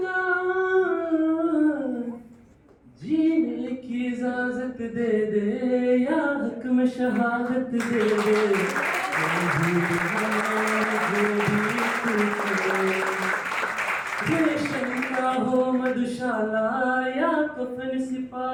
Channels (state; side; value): identical; both; correlation 1.00